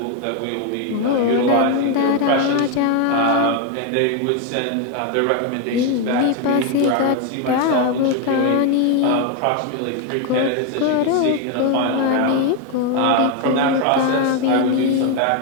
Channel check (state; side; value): different; both; correlation 0.01